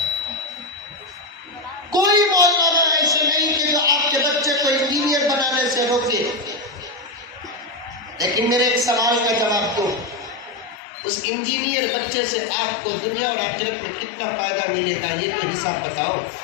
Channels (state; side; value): drops out; right; at 10.8 s